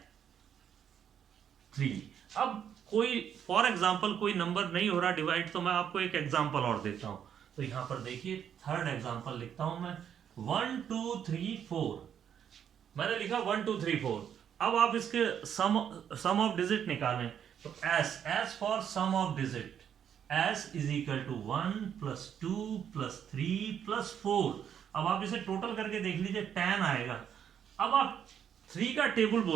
3। अब कोई फॉर एग्जाम्पल कोई नंबर नहीं हो रहा डिवाइड, तो मैं आपको एक एग्जाम्पल और देता हूं। तो यहां पर देखिए थर्ड एग्जाम्पल लिखता हूं मैं, 1 2 3 4। मैंने लिखा 1 2 3 4। अब आप इसके सम ऑफ डिजिट निकालें, तो S for sum of digit, S = 1 + 2 + 3 + 4। अब आप इसे टोटल करके देख लीजिए 10 आएगा। अब आप 3 का टेबल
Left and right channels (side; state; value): left; quieter; 8.7 dB